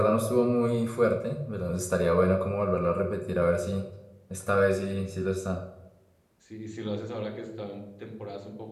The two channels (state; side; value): identical; both; correlation 1.00